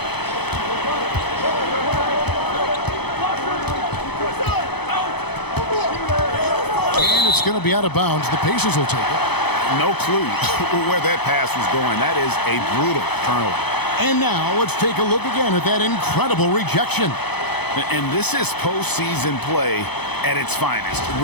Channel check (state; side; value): late; right; 0.98 ms